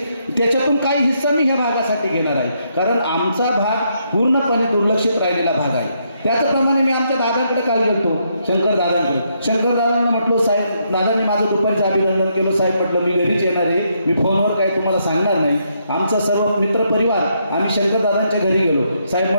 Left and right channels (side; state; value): both; inverted; correlation -0.76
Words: त्याच्यातून काही हिस्सा मी ह्या भागासाठी घेणार आहे, कारण आमचा भाग पूर्णपणे दुर्लक्षित राहिलेला भाग आहे. त्याचप्रमाणे मी आमच्या दादांकडे काल गेलतो, शंकर दादांना म्हटलो, साहेब दादांनी माझं दुपारचं अभिनंदन केलं. साहेब म्हटलं मी घरीच येणार आहे, मी फोनवर काही तुम्हाला सांगणार नाही. आमचा सर्व मित्रपरिवार आम्ही शंकर दादांच्या घरी गेलो. साहेब